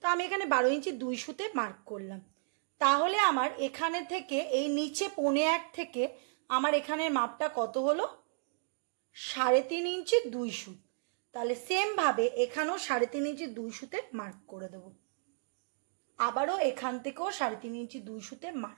তো আমি এখানে 12 ইঞ্চি 2 সুতে মার্ক করলাম। তাহলে আমার এখানে থেকে এই নিচে 1.25 থেকে আমার এখানের মাপটা কত হলো? 3.5 ইঞ্চি 2 সুত। তাহলে সেমভাবে এখানেও 3.5 ইঞ্চি 2 সুতে মার্ক করে দেব। আবারও এখান থেকেও 3.5 ইঞ্চি 2 সুতে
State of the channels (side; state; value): left; silent; digital silence